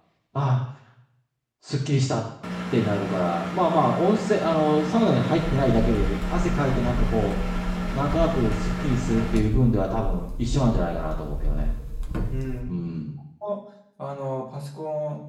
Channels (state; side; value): identical; both; correlation 1.00